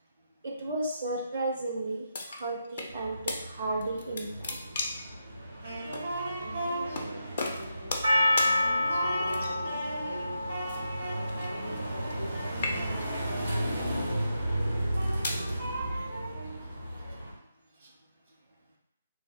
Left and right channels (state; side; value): inverted; both; correlation -0.85